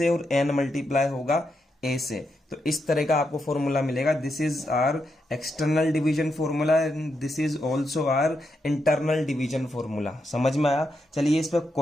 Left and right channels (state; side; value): normal; both; correlation 0.83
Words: और n मल्टीप्लाई होगा a से। तो इस तरह का आपको फॉर्मूला मिलेगा। This is our external division formula and this is also our internal division formula. समझ में आया? चलिए इस पर